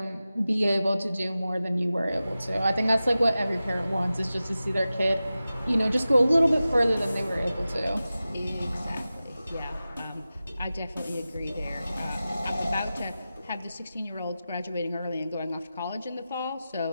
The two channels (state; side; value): inverted; both; correlation -0.94